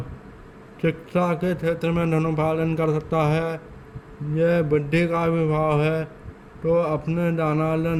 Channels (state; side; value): identical; both; correlation 1.00